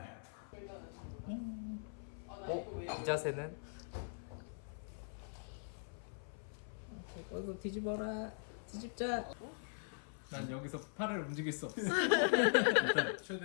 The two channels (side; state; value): right; silent; 50 dB below the other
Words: 이 자세는? 어서 뒤집어라. 뒤집자. 난 여기서 팔을 움직일 수 없어. 일단